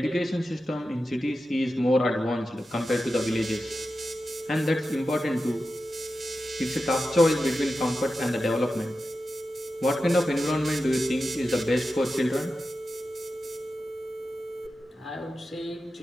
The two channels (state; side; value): normal; both; correlation 0.92